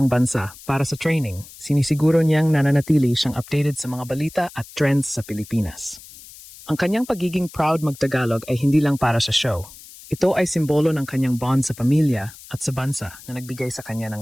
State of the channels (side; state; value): left; noise; hiss, 19 dB below the sound